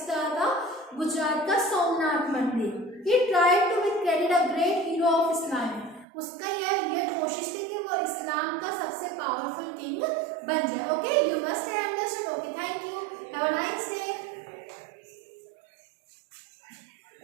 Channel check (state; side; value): drops out; left; at 6.1 s